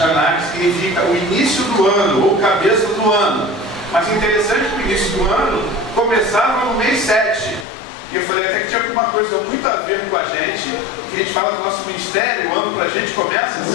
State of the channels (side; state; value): right; drops out; at 7.7 s